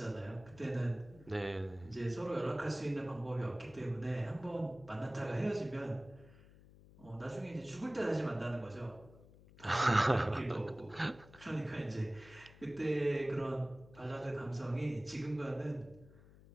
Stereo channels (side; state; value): left; noise; hum, 21 dB below the sound